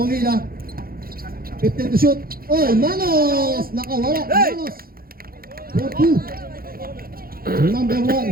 15 to shoot. Oy, Manos! Nakawala. Manos. 4-2. Number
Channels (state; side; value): late; left; 0.43 ms